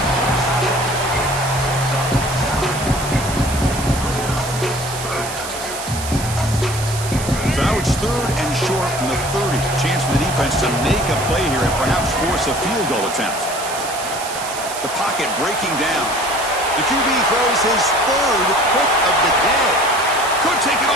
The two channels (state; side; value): noise; right; hiss, 9 dB below the sound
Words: So now it's 3rd and short from the 30. Chance for the defense to make a play here and perhaps force a field goal attempt. The pocket breaking down. The QB throws his 3rd pick of the day. Could take it